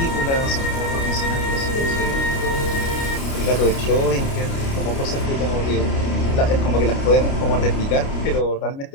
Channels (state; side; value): late; right; 29 ms